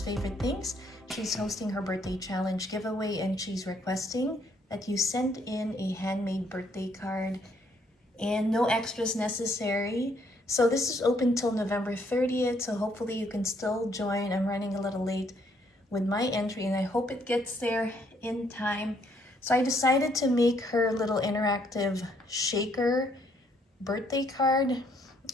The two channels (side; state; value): both; normal; correlation 0.69